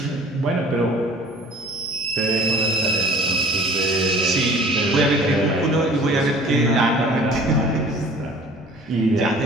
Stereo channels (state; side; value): normal; both; correlation 0.48